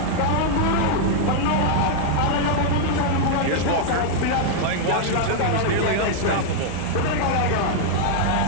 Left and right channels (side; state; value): both; different; correlation -0.01